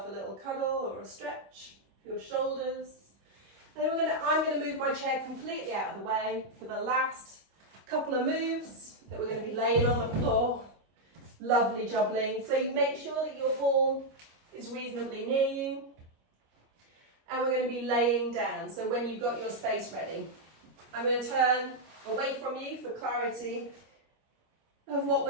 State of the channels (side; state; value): left; late; 25 ms